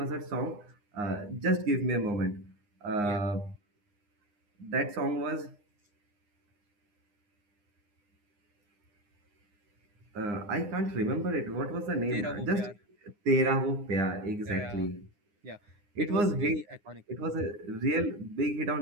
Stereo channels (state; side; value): late; left; 9.8 ms